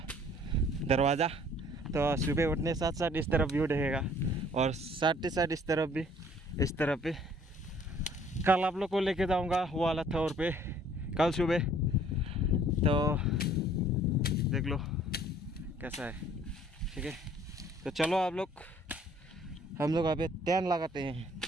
दरवाज़ा, तो सुबह उठने साथ साथ इस तरफ व्यू रहेगा और साथ ही साथ इस तरफ भी, इस तरफ भी। कल आप लोग को लेके जाऊंगा वो वाला थोर पे कल सुबह, तो देख लो कैसा है, ठीक है। तो चलो आप लोग, हम लोग अभी टेंट लगाते हैं,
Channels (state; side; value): normal; both; correlation 0.58